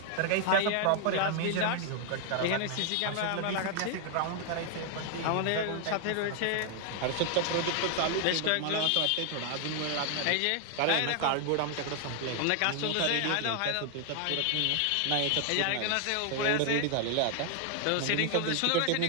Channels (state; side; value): different; both; correlation 0.00